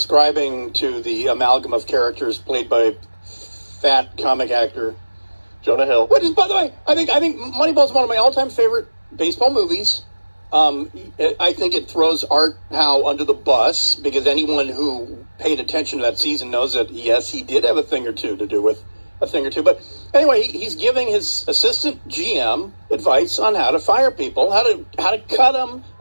to the amalgam of characters played by fat comic actor Jonah Hill. Which is, by the way, I think Moneyball is one of my all-time favorite baseball movies. I think it throws Art Howe under the bus because anyone who paid attention to that season knows that, yes, he did have a thing or two to do with a thing or two. But anyway, he's giving his assistant GM advice on how to fire people, how to cut them,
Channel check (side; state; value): both; inverted; correlation -1.00